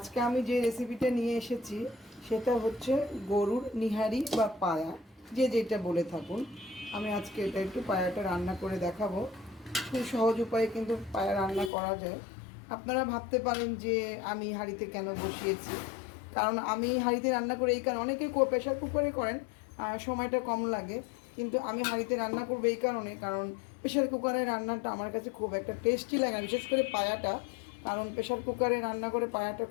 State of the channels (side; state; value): right; drops out; at 11.7 s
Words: আমি যে রেসিপিটা নিয়ে এসেছি সেটা হচ্ছে গরুর নিহারি বা পায়া, যে যেটা বলে থাকুন। আমি আজকে এটা একটু পায়াটা রান্না করে দেখাবো। খুব সহজ উপায়ে কিন্তু পায়া রান্না করা যায়। আপনারা ভাবতে পারেন যে আমি হাঁড়িতে কেন বসিয়েছি, কারণ আমি হাঁড়িতে রান্না করে এই কারণে, অনেকে প্রেশার কুকারে করেন, সময়টা কম লাগে, কিন্তু আমি হাঁড়িতে রান্না করবো এই কারণে, কারণ প্রেশার কুকারে রান্নাটা আমার কাছে খুব একটা টেস্টি লাগে, বিশেষ করে পায়াটা। কারণ প্রেশার কুকারে রান্না করে পায়াটা